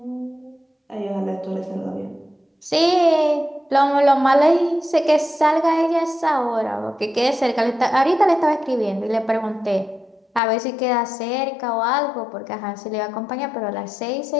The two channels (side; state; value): right; drops out; at 10.4 s